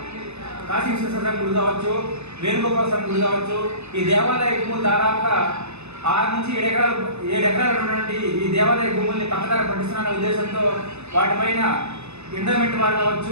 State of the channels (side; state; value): left; late; 0.81 ms